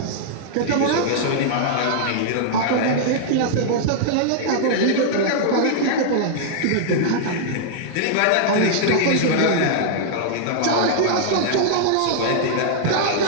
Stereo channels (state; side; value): different; both; correlation -0.01